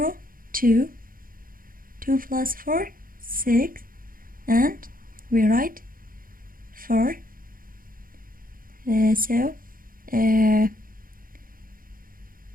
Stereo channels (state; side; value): late; left; 0.41 ms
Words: 2, 2 plus 4, 6, and we write 4. So